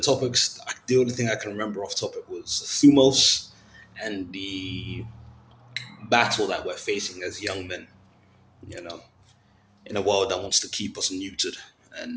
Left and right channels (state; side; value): identical; both; correlation 1.00